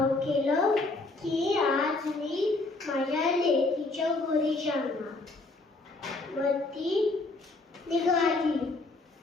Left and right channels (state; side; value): quieter; right; 3.2 dB